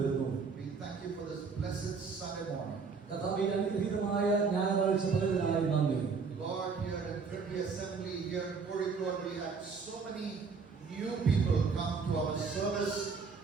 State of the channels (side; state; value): left; quieter; 5.1 dB